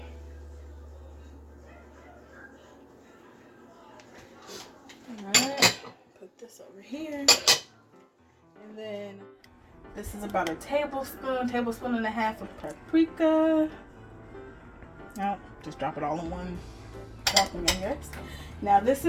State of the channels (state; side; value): identical; both; correlation 1.00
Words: Alright, put this over here. And then this is about 1 tablespoon and a half of paprika. No, just drop it all in one dropping, I guess. Now this